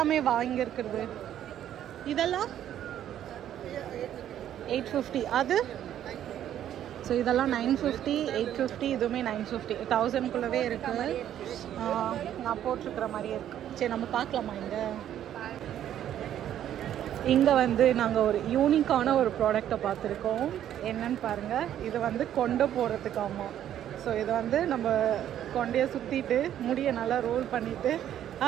வாங்கி இருக்கிறது. இதெல்லாம் 850. அது ஸோ இதெல்லாம் 950, 850. இதுவுமே 950. 1000க்குள்ளவே இருக்குது. நான் போட்டிருக்கிற மாதிரியே இருக்குது. சரி நம்ம பார்க்கலாமா? இங்கே வந்து நாங்கள் ஒரு யூனிக்கான ஒரு ப்ராடக்டை பார்த்துருக்கோம். என்னன்னு பாருங்கள். இது வந்து கொண்டை போடுறதுக்காமா. ஸோ இதை வந்து நம்ம கொண்டையை சுற்றிட்டு முடியை நல்லா ரோல் பண்ணிவிட்டு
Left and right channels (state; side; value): quieter; left; 11.0 dB